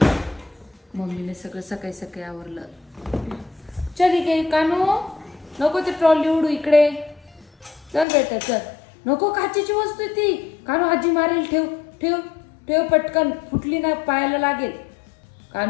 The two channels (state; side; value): drops out; right; at 8.1 s